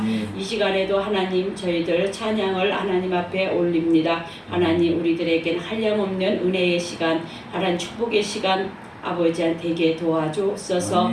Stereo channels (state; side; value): identical; both; correlation 1.00